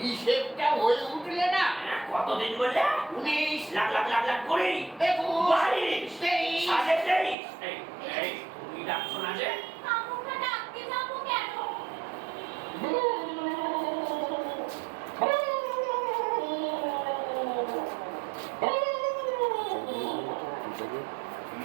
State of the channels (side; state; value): left; drops out; at 7.4 s